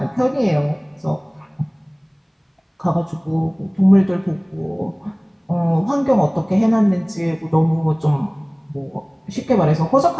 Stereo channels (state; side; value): identical; both; correlation 1.00